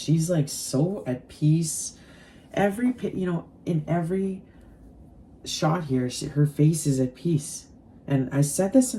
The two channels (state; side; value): identical; both; correlation 1.00